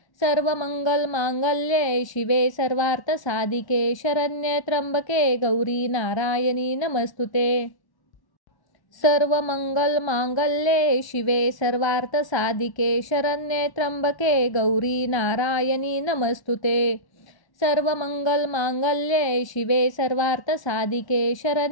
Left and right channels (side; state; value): right; late; 1.3 ms